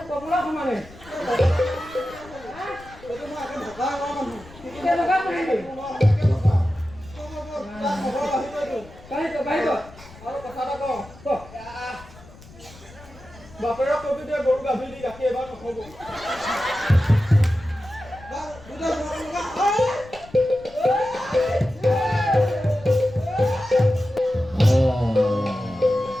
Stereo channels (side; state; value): left; noise; rumble, 21 dB below the sound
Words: কমলা সমানে এইটো মই এখন ঢকা কৰা মানুহ। কেনেকুৱা মাৰিবি এনেকে ঢকা। তাৰ খবৰ আহিবইতো। কাঢ়িব আৰু কথা এটা কওঁ, ক বাপেৰক কবি দে গৰু গাভীৰ দি গাখীৰ এবাৰ নখব। দুটা